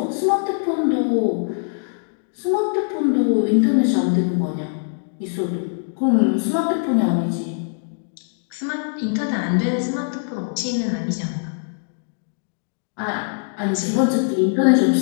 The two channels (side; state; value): right; silent; digital silence